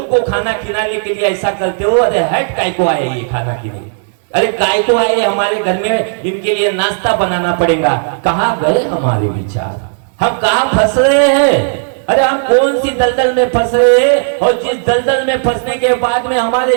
को खाना खिलाने के लिए ऐसा करते हो। अरे हट, काय को आए ये खाना खिलाने, अरे काय को आए, हमारे घर में इनके लिए नाश्ता बनाना पड़ेगा। कहाँ गए हमारे विचार, हम कहाँ फंस रहे हैं? अरे हम कौन सी दलदल में फंस रहे हैं, और जिस दलदल में फंसने के बाद में हमारे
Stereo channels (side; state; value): left; silent; digital silence